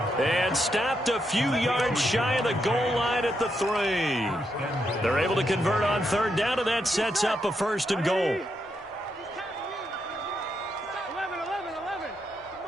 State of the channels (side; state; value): both; normal; correlation 0.81